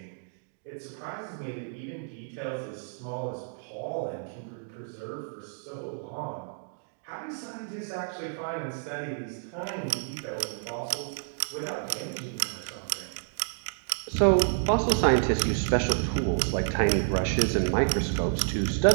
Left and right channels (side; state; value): left; silent; digital silence